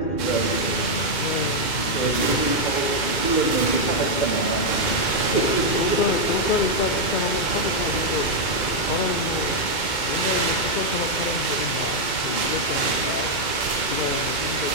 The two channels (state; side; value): late; right; 2.1 ms